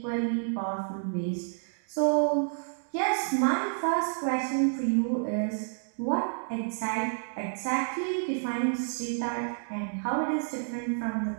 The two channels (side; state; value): left; silent; digital silence